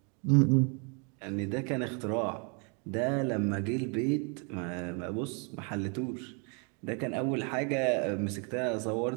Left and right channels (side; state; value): left; quieter; 36.6 dB